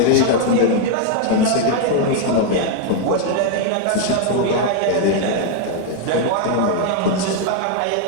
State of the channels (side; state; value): both; different; correlation 0.00